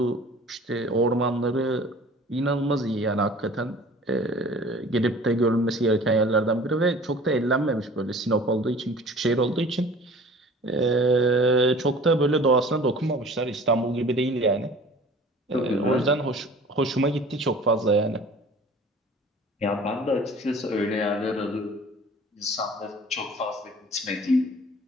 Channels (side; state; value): both; normal; correlation 0.46